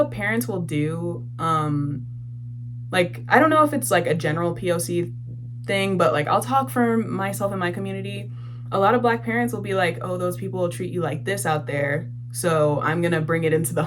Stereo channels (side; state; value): both; identical; correlation 1.00